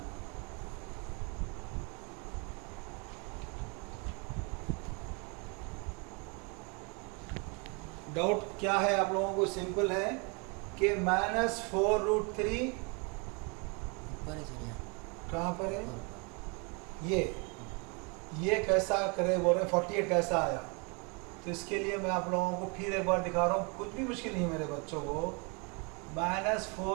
डाउट क्या है आप लोगों को? सिंपल है कि माइनस 4 रूट 3 कहाँ पर है? ये कैसा करे बोल रहे हैं? 48 कैसा आया? तो इसके लिए मैं आप लोगों को फिर एक बार दिखा रहा हूँ, कुछ भी मुश्किल नहीं है मेरे बच्चों को. माइनस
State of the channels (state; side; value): quieter; left; 32.5 dB